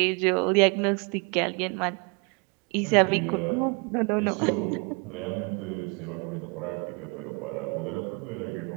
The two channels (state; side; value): quieter; left; 32.6 dB